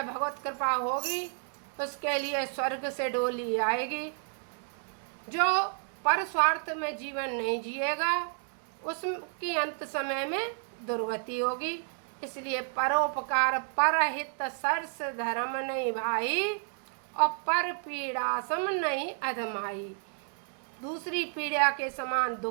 भगवत कृपा होगी उसके लिए स्वर्ग से डोली आएगी। जो पर स्वार्थ में जीवन नहीं जिएगा उसकी अंत समय में दुर्गति होगी। इसलिए परोपकार परहित सरस धर्म नहीं भाई, और पर पीड़ा सम नहीं अधमाई। दूसरी पीड़ा के समान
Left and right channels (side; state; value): left; silent; 57 dB below the other